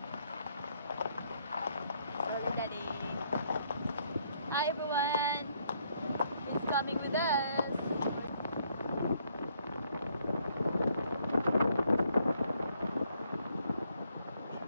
Daddy. Hi everyone. Who's coming with us?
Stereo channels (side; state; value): both; inverted; correlation -0.70